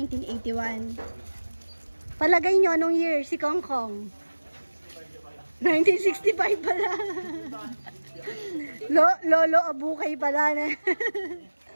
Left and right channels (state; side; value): inverted; both; correlation -1.00